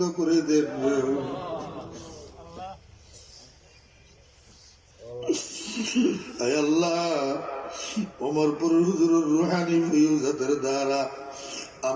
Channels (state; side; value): identical; both; correlation 1.00